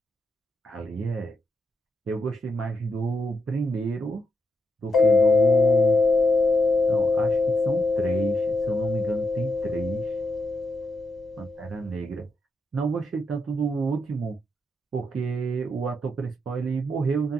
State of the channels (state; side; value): normal; both; correlation 0.82